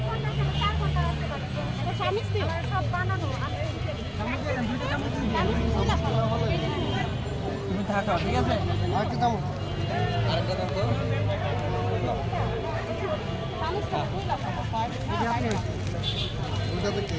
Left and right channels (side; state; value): both; identical; correlation 1.00